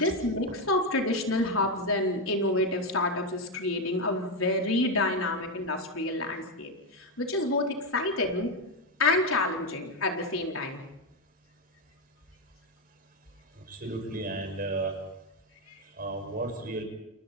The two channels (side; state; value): both; normal; correlation 0.07